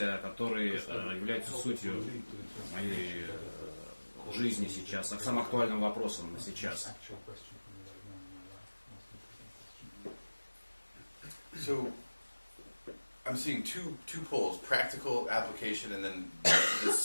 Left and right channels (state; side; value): inverted; both; correlation -1.00